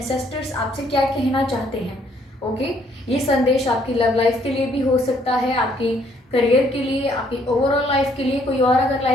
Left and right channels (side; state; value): both; normal; correlation 0.66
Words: आपसे क्या कहना चाहते हैं। ओके, ये संदेश आपकी लव लाइफ के लिए भी हो सकता है, आपकी करियर के लिए, आपकी ओवरऑल लाइफ के लिए, कोई और अगर